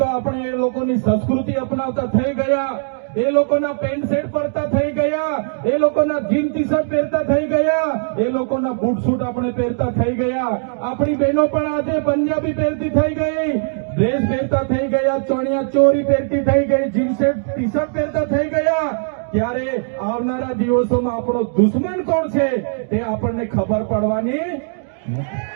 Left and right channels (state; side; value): silent; left; digital silence